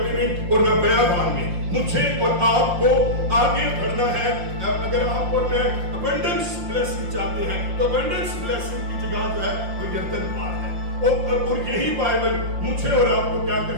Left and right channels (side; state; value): left; late; 5.7 ms